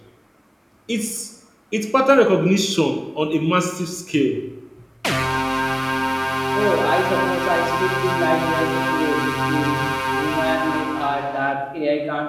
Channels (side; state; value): both; identical; correlation 1.00